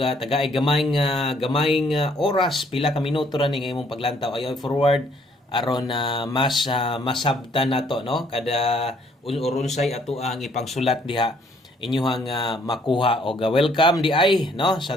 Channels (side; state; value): both; normal; correlation 0.64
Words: gamayng oras pila ka minuto ra ning imong paglantaw ayo forward aron mas masabtan nato, no, kada urunsay ato ang ipangsulat diha inyuhang makuha og welcome di ay, no,